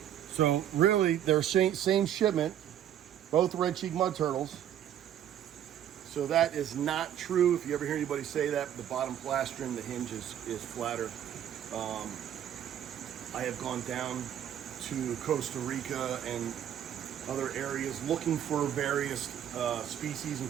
So really, they're same shipment, both red cheek mud turtles. So that is not true. If you ever hear anybody say that, the bottom plastron, the hinge is flatter. I have gone down to Costa Rica and other areas looking for various species,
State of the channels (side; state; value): left; quieter; 10.5 dB